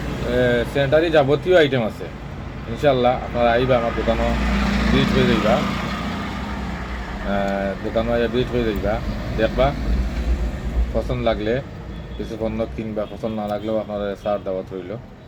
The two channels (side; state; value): both; identical; correlation 1.00